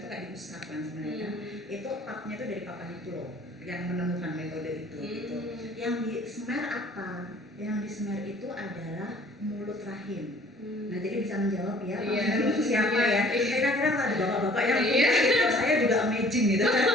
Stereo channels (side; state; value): both; normal; correlation 0.54